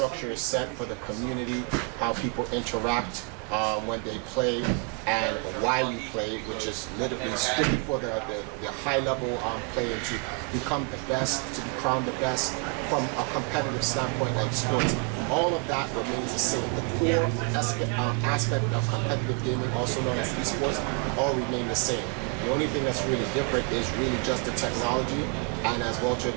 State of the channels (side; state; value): left; quieter; 32.3 dB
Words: is set for the community, how people interact when they play, and why we play, which is literally strictly for the high level player to become the best, to be crowned the best from a competitive standpoint like sports. All of that remains the same. The core aspect of competitive gaming, also known as esports, all remain the same. The only thing that's really different is really just the technology, and as Walter